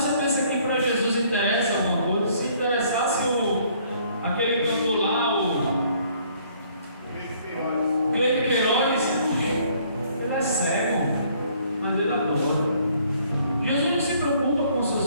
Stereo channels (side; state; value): both; inverted; correlation -0.61